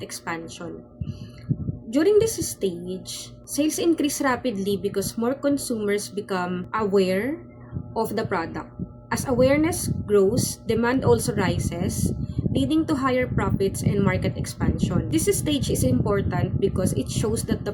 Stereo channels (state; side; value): identical; both; correlation 1.00